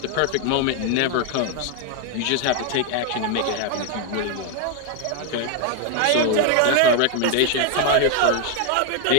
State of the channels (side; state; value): both; different; correlation 0.01